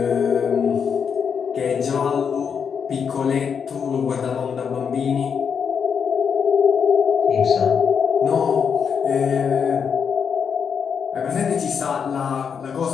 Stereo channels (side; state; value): right; quieter; 6.8 dB